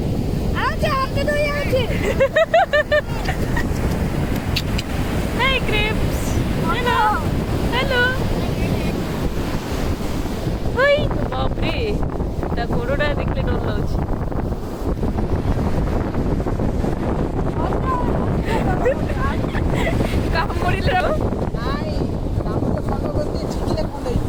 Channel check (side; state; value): both; identical; correlation 1.00